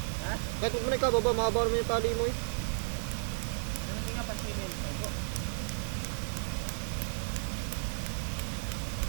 Ha? Kahit ko na ka, baba. Mahaba naman yung tali mo eh. Ano nga pansinin? Tago.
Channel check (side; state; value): left; silent; digital silence